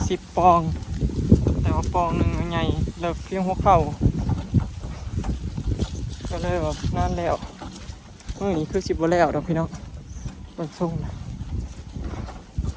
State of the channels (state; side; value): identical; both; correlation 1.00